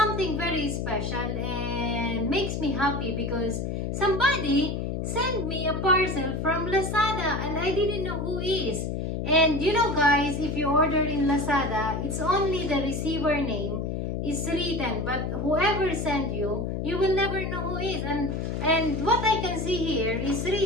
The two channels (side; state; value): left; noise; hum, 2 dB below the sound